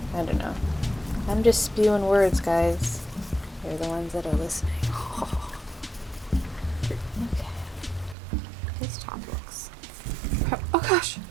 I don't know. I'm just spewing words, guys. You're the ones that are listening. Okay. His top looks. Oh gosh!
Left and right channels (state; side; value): drops out; left; at 8.2 s